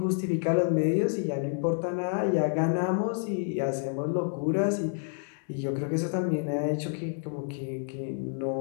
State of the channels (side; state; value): right; silent; digital silence